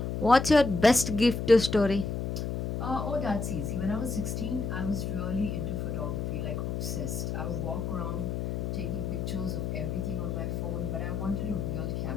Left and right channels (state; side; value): noise; left; hum, 2 dB below the sound